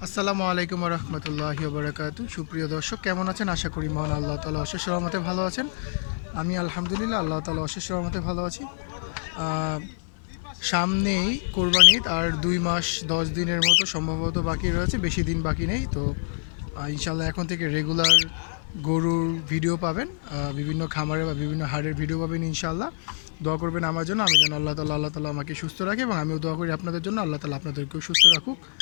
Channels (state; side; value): silent; right; 61 dB below the other